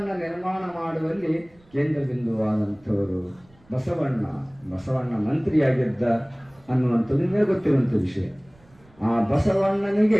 ನಿರ್ಮಾಣ ಮಾಡುವಲ್ಲಿ ಕೇಂದ್ರ ಬಿಂದುವಾದಂಥವರು ಬಸವಣ್ಣ ಮಂತ್ರಿಯಾಗಿದ್ದ ಅನ್ನುವಂಥದ್ದು ನಿಮಗೆ ಗೊತ್ತಿರುವಂಥ ವಿಷಯ. ಆ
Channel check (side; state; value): right; noise; rumble, 30 dB below the sound